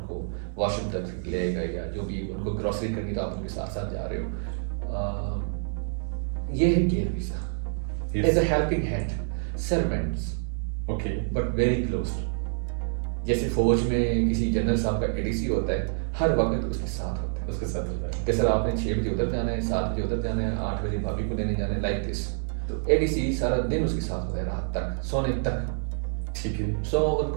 کو واش روم تک لے گئے، یا جو بھی ان کو گروسری کرنی تو آپ ان کے ساتھ ساتھ جا رہے ہو. یہ ہے care visa as a helping hand. Servants but very close. جیسے فوج میں کسی جنرل صاحب کا ADC ہوتا ہے، ہر وقت اس کے ساتھ ہوتا ہے. کہ سر آپ نے 6 بجے ادھر جانا ہے، 7 بجے ادھر جانا ہے، 8 بجے بھابھی کو لینے جانا ہے، لائک دس. تو ADC سارا دن اس کے ساتھ ہوتا ہے، رات تک، سونے تک. ٹھیک ہے. سو ان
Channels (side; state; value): left; silent; digital silence